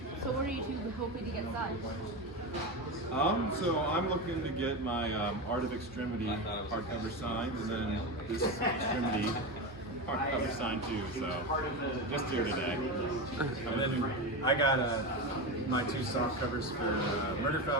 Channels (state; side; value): normal; both; correlation 0.19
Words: So what are you two hoping to get signed? So I'm looking to get my Art of Extremity hardcover signed, and then this Extremity hardcover signed too. So just here today. And then I got my two soft covers for Murder